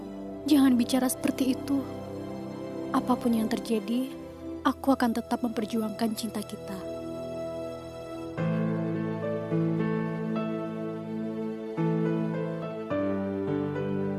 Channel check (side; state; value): both; identical; correlation 1.00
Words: Jangan bicara seperti itu. Apapun yang terjadi, aku akan tetap memperjuangkan cinta kita.